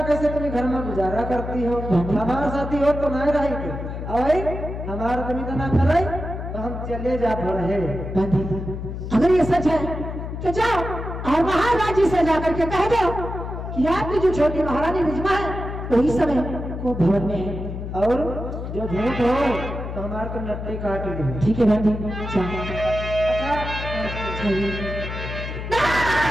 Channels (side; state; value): left; noise; hum, 7 dB below the sound